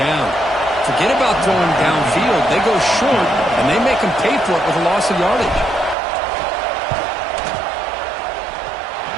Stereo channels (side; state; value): left; drops out; at 6.0 s